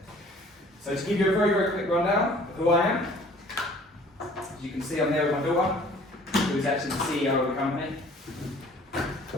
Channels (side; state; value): both; normal; correlation 0.53